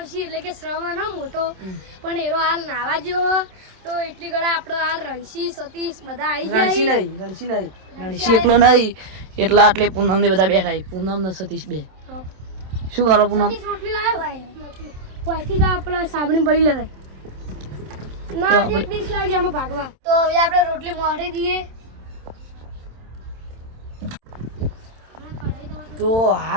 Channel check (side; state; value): left; late; 27 ms